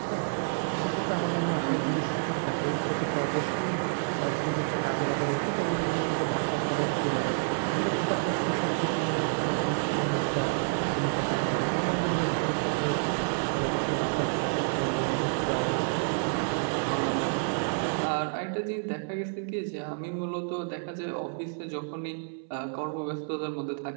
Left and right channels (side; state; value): left; silent; 59 dB below the other